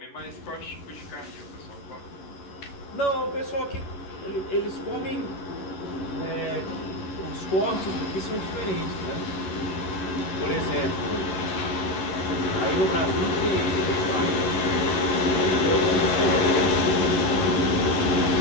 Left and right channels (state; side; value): late; right; 11 ms